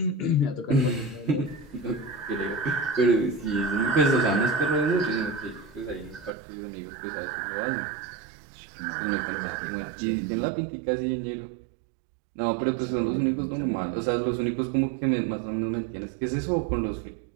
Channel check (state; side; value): drops out; left; at 6.3 s